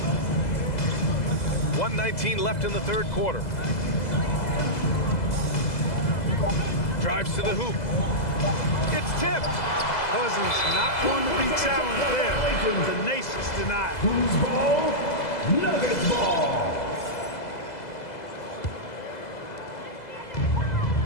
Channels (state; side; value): late; right; 2.0 ms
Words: 1:19 left in the third quarter. Drives to the hoop. It's tipped. Cousins not going to be challenged there. Tenacious denied. Who's ball? Nuggets ball.